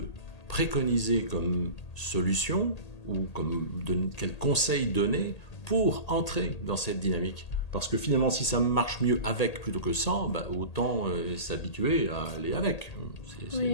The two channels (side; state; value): right; late; 1.8 ms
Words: préconiser comme solution ou quel conseil donner pour entrer dans cette dynamique? Parce que finalement, si ça marche mieux avec plutôt que sans, autant s'habituer à aller avec.